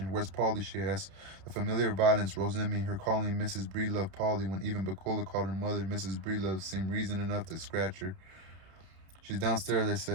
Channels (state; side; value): late; left; 31 ms